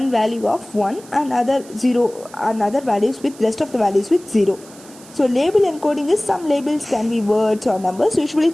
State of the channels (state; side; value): noise; right; hiss, 22 dB below the sound